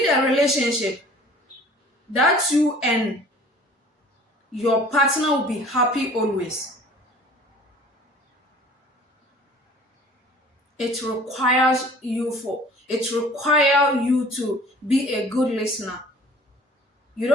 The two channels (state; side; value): normal; both; correlation 0.48